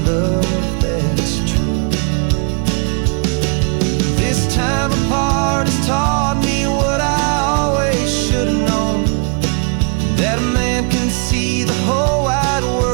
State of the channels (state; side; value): quieter; left; 39.5 dB